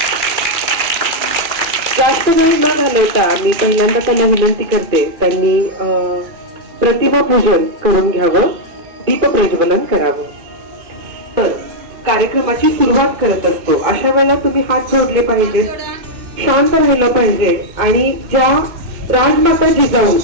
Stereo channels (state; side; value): late; left; 2.4 ms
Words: जास्त वेळ न घालवता मी पहिल्यांदा त्यांना विनंती करते त्यांनी प्रतिमा पूजन करून घ्यावं, दीप प्रज्वलन करावं। तर कार्यक्रमाची सुरुवात करत असतो अशा वेळेला तुम्ही हात जोडले पाहिजेत, शांत राहिलं पाहिजे आणि ज्या राजमाता जिजाऊ